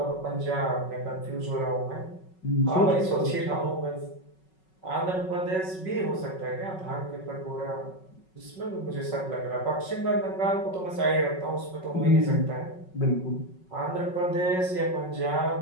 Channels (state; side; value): late; right; 5.4 ms